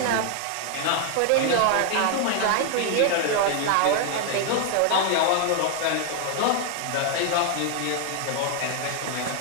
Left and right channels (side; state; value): both; different; correlation 0.00